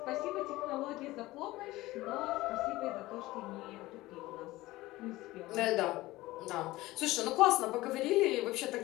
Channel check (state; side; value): quieter; right; 18.4 dB